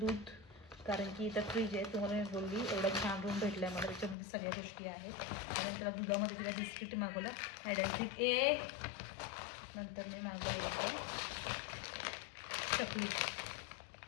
कारण की इथं फ्रीज आहे. तुम्हाला मी बोलली एवढा छान रूम भेटला आहे मला, त्याच्यामध्ये सगळ्या गोष्टी आहेत. आणि त्याला दुधामध्ये तिला बिस्किट मागवलं ॲडॅन्टिक नंतर मी मागवलं होतं चॉकलेट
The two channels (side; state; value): right; drops out; at 4.2 s